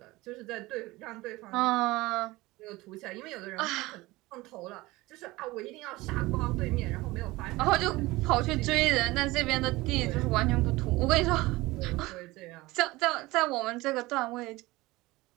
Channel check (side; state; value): left; quieter; 20.3 dB